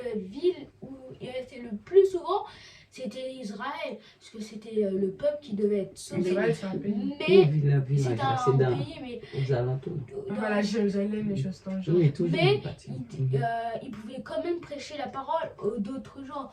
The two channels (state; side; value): identical; both; correlation 1.00